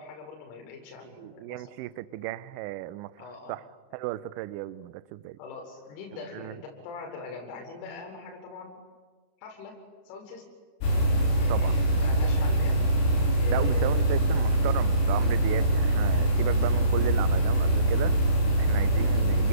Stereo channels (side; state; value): right; late; 30 ms